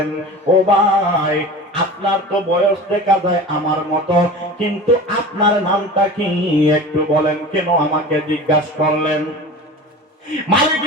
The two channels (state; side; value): normal; both; correlation 0.35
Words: ও ভাই, আপনার তো বয়স দেখা যায় আমার মতো, কিন্তু আপনার নামটা কি একটু বলেন, কেন আমাকে জিজ্ঞাসা করলেন? মালিক